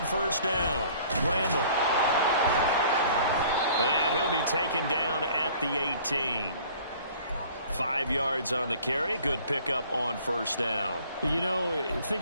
first down. Randall. And he'll be taken down at the 18. 5 yards on the carry. Good pickup on first down. You know,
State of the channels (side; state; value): both; inverted; correlation -0.51